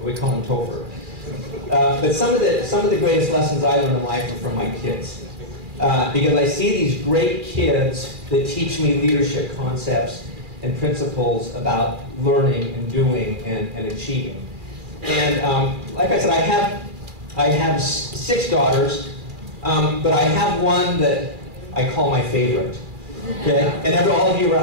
we call him Topher. But some of the greatest lessons I learned in life are from my kids. Because I see these great kids that teach me leadership concepts and principles about learning and doing and achieving. And like I said, I have 6 daughters, but I have one that I call my favorite. Okay? And all of you are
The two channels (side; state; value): left; late; 2.4 ms